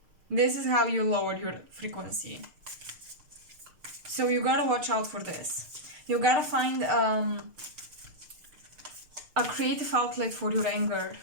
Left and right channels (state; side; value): late; left; 6.6 ms